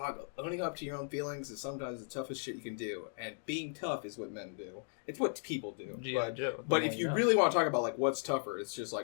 owning up to your own feelings is sometimes the toughest shit you can do. And being tough is what men do. It's what people do. But if you really want to talk about, what's tougher, it's just,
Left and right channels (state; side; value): silent; right; 53 dB below the other